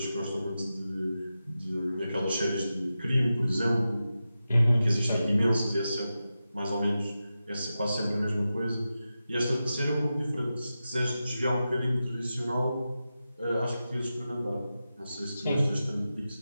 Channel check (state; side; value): inverted; both; correlation -0.92